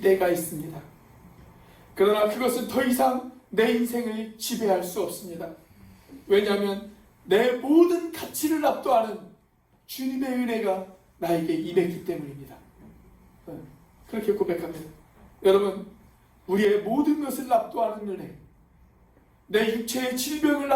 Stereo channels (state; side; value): identical; both; correlation 1.00